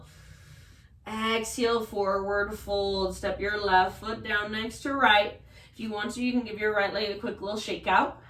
Exhale, forward fold. Step your left foot down next to right. If you want to, you can give your right leg a quick little shake out.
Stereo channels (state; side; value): identical; both; correlation 1.00